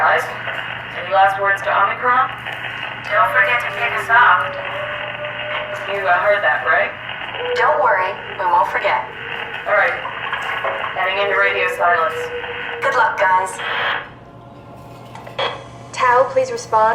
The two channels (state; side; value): identical; both; correlation 1.00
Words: any last words to Omicron? Don't forget to pick us up. You heard that, right? Don't worry, we won't forget. Alright. Heading into radio silence. Good luck, guys. Tau, please